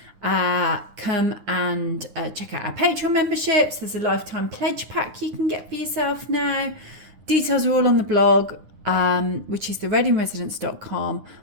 Come and check out our Patreon memberships. There's a lifetime pledge pack you can get for yourself now. Details are all on the blog, which is thereadingresidence.com,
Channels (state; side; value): late; left; 9.7 ms